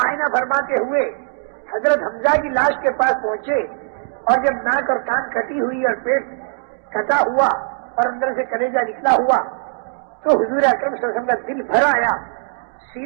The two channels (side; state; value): left; silent; digital silence